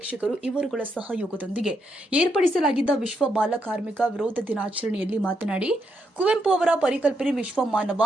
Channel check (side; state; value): both; normal; correlation 0.80